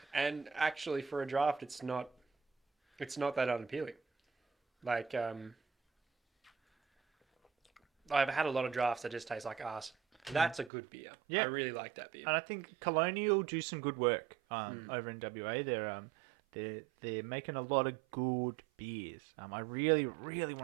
and actually for a draft, it's not that unappealing. Like I've had a lot of drafts that just taste like arse. That's a good beer. Yeah. I really like that beer. And I think Colonial do some good work over in WA. They're making a lot of good beers. I really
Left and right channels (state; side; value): drops out; left; at 10.7 s